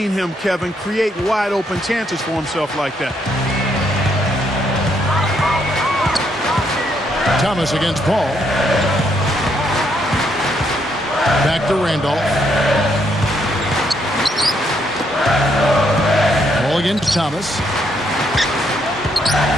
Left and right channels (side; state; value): both; normal; correlation 0.74